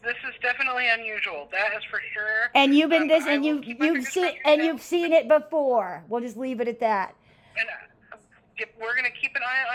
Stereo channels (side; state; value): both; identical; correlation 1.00